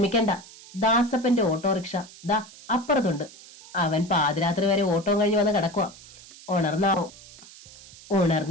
ദാസപ്പന്റെ ഓട്ടോറിക്ഷ ദാ അപ്പുറത്തുണ്ട്. അവൻ പാതിരാത്രി വരെ ഓട്ടം കഴിഞ്ഞ് വന്ന് കിടക്കുക. ഉണർന്നാവോ?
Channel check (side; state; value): right; noise; hiss, 20 dB below the sound